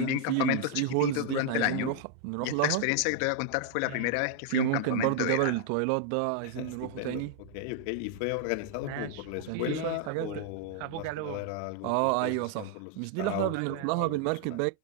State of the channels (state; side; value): different; both; correlation 0.00